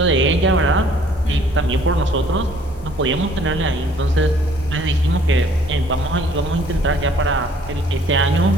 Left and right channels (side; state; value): both; normal; correlation 0.58